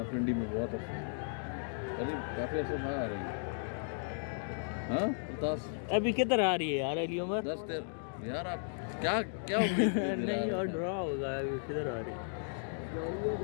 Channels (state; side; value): silent; right; digital silence